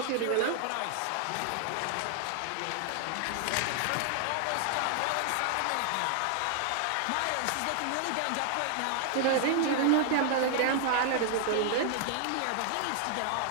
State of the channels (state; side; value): different; both; correlation 0.00